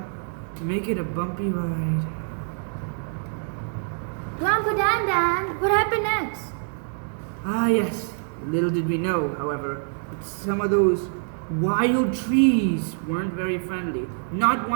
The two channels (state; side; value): silent; left; 62 dB below the other